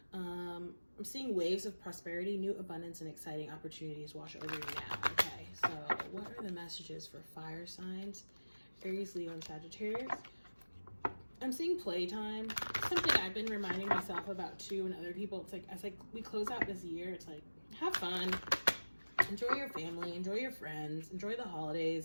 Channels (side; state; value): both; inverted; correlation -1.00